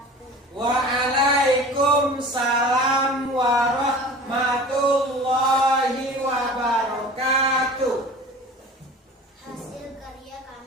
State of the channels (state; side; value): normal; both; correlation 0.40